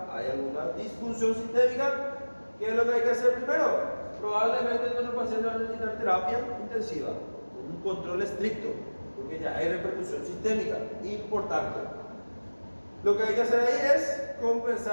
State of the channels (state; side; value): inverted; both; correlation -1.00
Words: hay alguna disfunción sistémica, ¿qué es lo que hay que hacer primero? Probablemente nuestro paciente va a necesitar terapia intensiva, con un control estricto, porque ya hay repercusión sistémica importante. Lo que hay que hacer ahí es